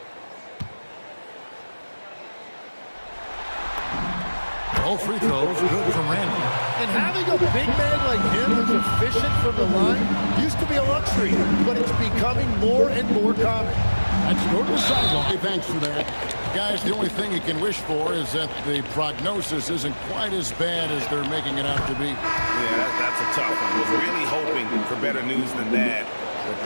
All free throws good from Randall. And having a big man like him who's efficient from the line used to be a luxury, but it's becoming more and more common. Let's go to the sideline. Hey, thanks for that. Guys, the only thing you can wish for is that the prognosis isn't quite as bad as they're making it out to be. Yeah, that's a tough one. Was really hoping for better news than that, but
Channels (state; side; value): inverted; both; correlation -1.00